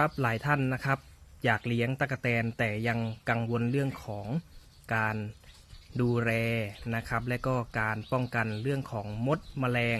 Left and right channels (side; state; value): both; identical; correlation 1.00